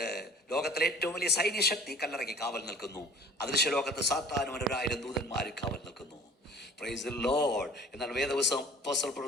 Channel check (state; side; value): normal; both; correlation 0.47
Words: ലോകത്തിലെ ഏറ്റവും വലിയ സൈന്യശക്തി കല്ലറയ്ക്ക് കാവൽ നിൽക്കുന്നു. അദൃശ്യലോകത്ത് സാത്താനും 1000 ദൂതന്മാർ കാവൽ നിൽക്കുന്നു. Price the Lord. എന്നാൽ വേദപുസ്തകം അപ്പോസ്തലൻ